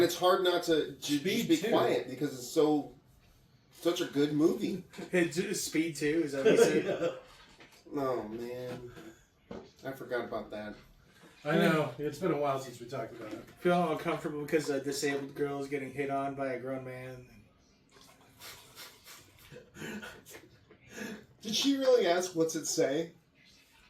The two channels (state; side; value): identical; both; correlation 1.00